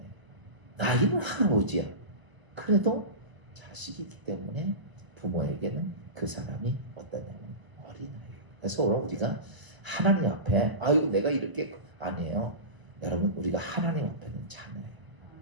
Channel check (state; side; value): late; left; 1.0 ms